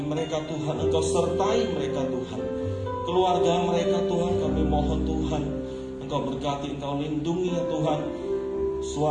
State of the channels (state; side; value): identical; both; correlation 1.00